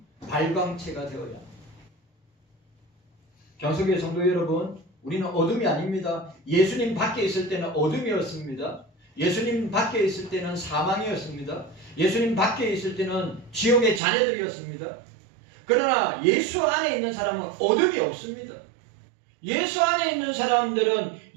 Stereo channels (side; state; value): left; drops out; at 14.0 s